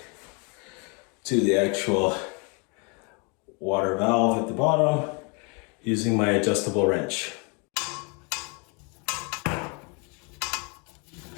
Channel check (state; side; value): quieter; right; 33.4 dB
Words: to the actual water valve at the bottom using my adjustable wrench.